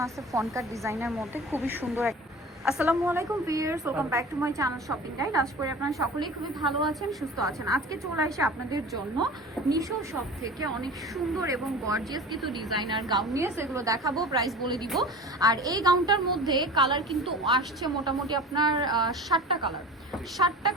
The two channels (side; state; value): both; normal; correlation 0.37